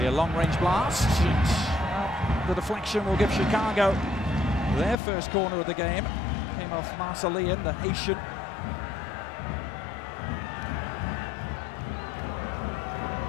a long-range blast. Well, the deflection will give Chicago their first corner of the game. Came off Marcellian, the Haitian.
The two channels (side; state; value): right; drops out; at 5.0 s